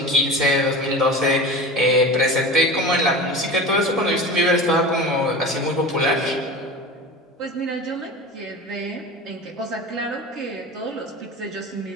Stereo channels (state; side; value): normal; both; correlation 0.31